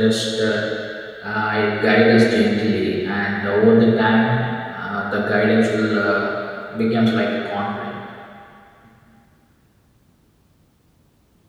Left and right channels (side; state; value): both; identical; correlation 1.00